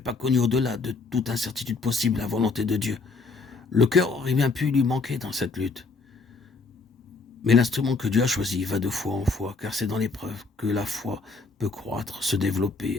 connu au-delà de toute incertitude possible la volonté de Dieu, le cœur aurait bien pu lui manquer dans cette lutte. Mais l'instrument que Dieu a choisi va de foi en foi, car c'est dans l'épreuve que la foi peut croître, se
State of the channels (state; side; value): quieter; right; 4.1 dB